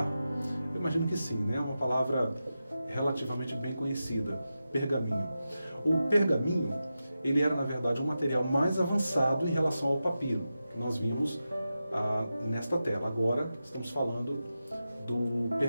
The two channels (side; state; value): both; inverted; correlation -0.91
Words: Eu imagino que sim, né? É uma palavra relativamente bem conhecida, pergaminho. O pergaminho, ele era, na verdade, um material mais avançado em relação ao papiro, que nós vimos nesta tela. Agora estamos falando do